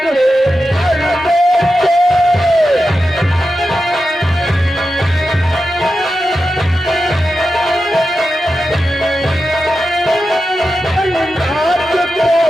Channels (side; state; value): both; normal; correlation 0.90